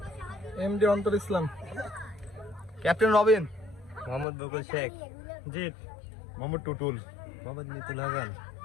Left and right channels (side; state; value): right; drops out; at 4.2 s